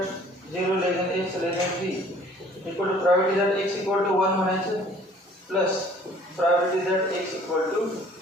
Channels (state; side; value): normal; both; correlation 0.54